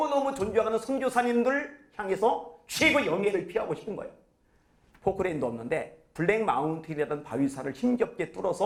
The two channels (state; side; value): identical; both; correlation 1.00